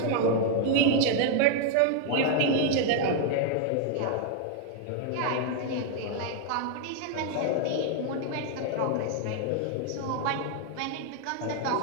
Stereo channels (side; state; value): both; different; correlation 0.00